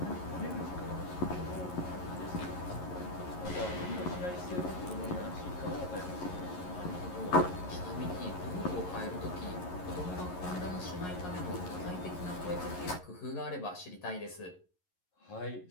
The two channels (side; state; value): right; late; 11 ms